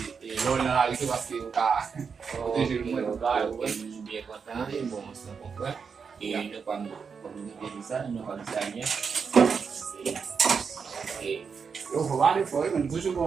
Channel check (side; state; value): left; quieter; 5.9 dB